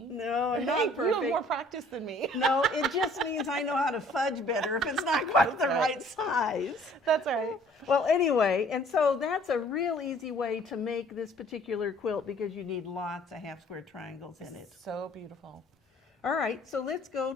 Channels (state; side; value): normal; both; correlation 0.56